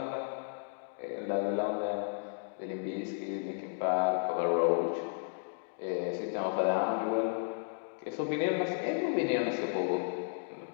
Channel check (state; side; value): silent; right; digital silence